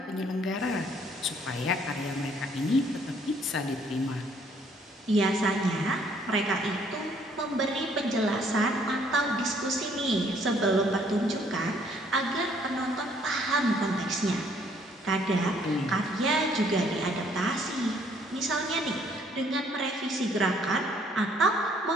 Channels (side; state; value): both; normal; correlation 0.63